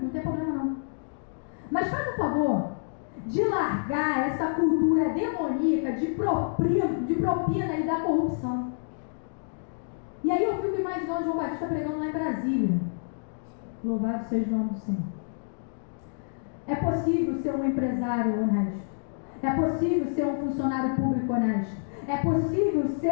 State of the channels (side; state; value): right; silent; digital silence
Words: não tem problema não. Mas faz o favor de largar essa cultura demoníaca de propina e da corrupção. E aí eu fico imaginando João Batista pregando lá em Brasília. Louvado seja o nome do Senhor. É possível ser um empresário honesto. É possível ser um funcionário público honesto. É possível